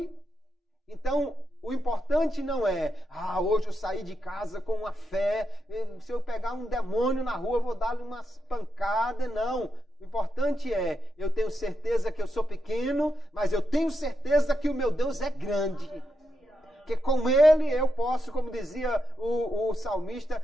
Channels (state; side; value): normal; both; correlation 0.85